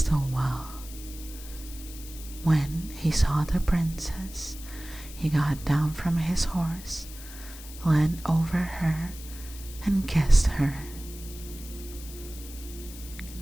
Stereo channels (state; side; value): noise; left; hiss, 15 dB below the sound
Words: wall. When he saw the princess, he got down from his horse, leaned over her, and kissed her.